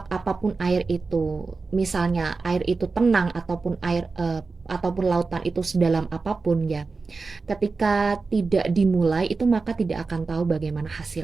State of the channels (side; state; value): left; quieter; 4.2 dB